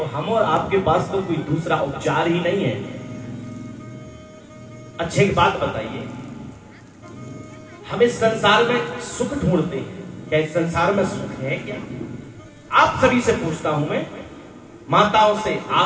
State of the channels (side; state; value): both; identical; correlation 1.00